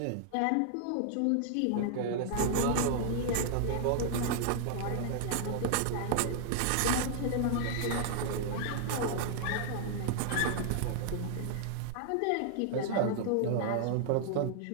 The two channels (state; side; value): different; both; correlation 0.00